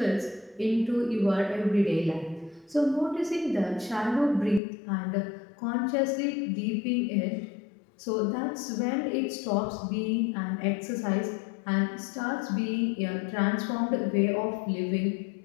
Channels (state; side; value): drops out; right; at 4.6 s